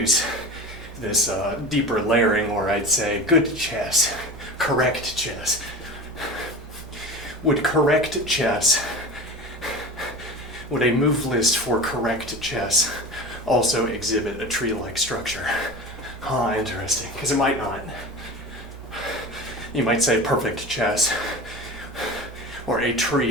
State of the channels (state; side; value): normal; both; correlation 0.31